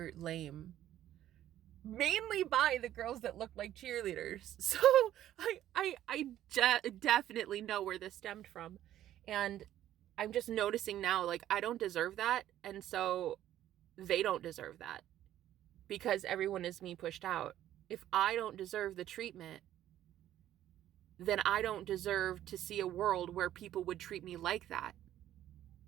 lame. Mainly by the girls that looked like cheerleaders. So I definitely know where this stemmed from. And I'm just noticing now, like, I don't deserve that. And so they don't deserve that because everyone is me pushed out. If I don't deserve the treatment, then I don't deserve to see a world where people would treat me like that.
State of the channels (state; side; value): quieter; left; 12.4 dB